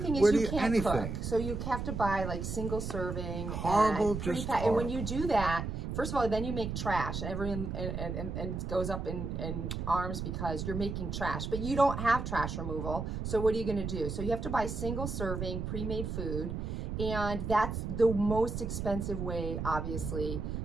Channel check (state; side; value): noise; right; rumble, 4 dB below the sound